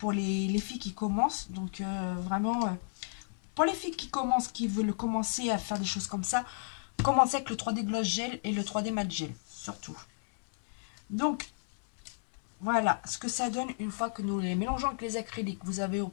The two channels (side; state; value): right; silent; 56 dB below the other